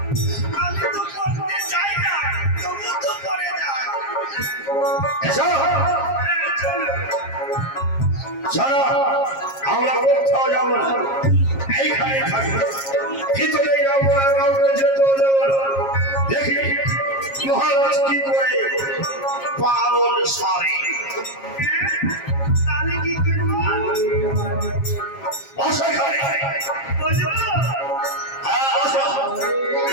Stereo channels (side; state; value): right; late; 7.4 ms